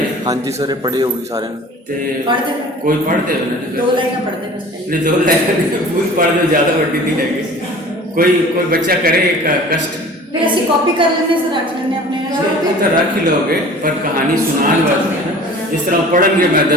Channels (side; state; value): both; normal; correlation 0.44